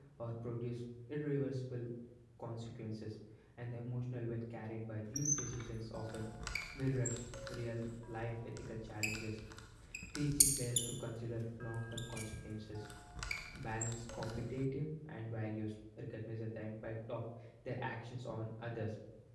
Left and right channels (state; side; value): identical; both; correlation 1.00